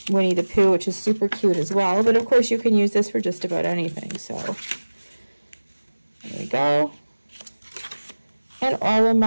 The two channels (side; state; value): both; inverted; correlation -1.00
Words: Winnie the Pooh, which is super cute as well. But of course you can use this for just about anything. So there we go. And all of